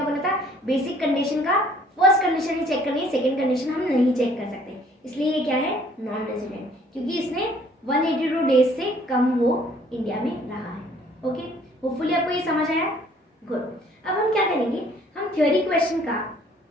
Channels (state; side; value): normal; both; correlation 0.58